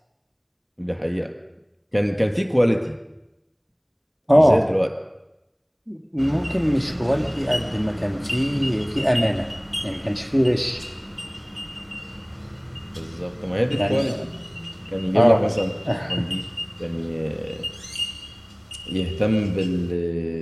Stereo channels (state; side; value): identical; both; correlation 1.00